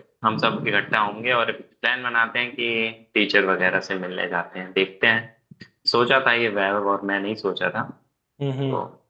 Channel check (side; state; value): both; identical; correlation 1.00